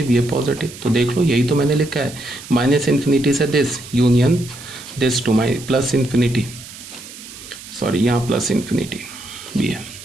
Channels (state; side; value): noise; right; hiss, 15 dB below the sound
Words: ये पॉजिटिव। तो देख लो, यही तो मैंने लिखा है, -∞ से this union this to plus infinity, sorry यहाँ प्लस इन्फिनिटी भी है।